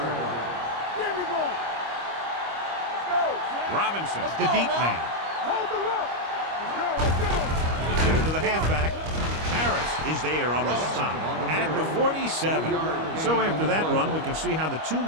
line. There we go. Let's go. Robinson, the deep man. Hold the look. Let's go. Give it to the halfback. Harris is there on the stop at the 47. So after that run, we can see how the two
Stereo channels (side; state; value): left; late; 25 ms